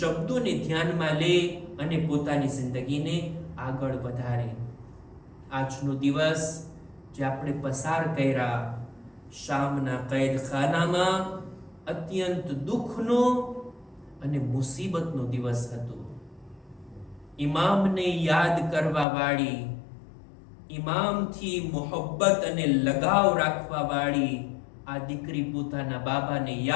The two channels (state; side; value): drops out; right; at 19.1 s